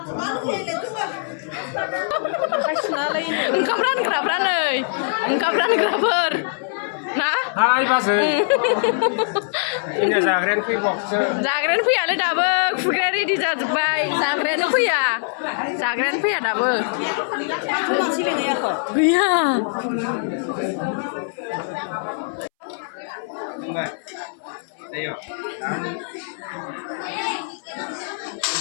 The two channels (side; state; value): right; silent; 64 dB below the other